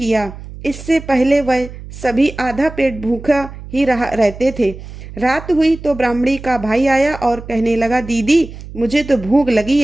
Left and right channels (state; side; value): noise; right; hum, 14 dB below the sound